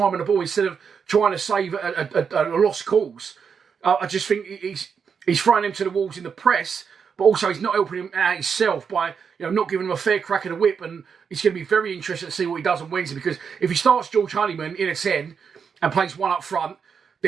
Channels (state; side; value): quieter; left; 6.4 dB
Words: on the ball instead of trying to save a lost cause. I just think he's throwing them to the walls in the press, but also he's not helping him out himself by not giving him a fair crack of the whip. And it's going to be very interesting to see what he does on Wednesday, because if he starts George Honeyman in a 10 and plays one up front,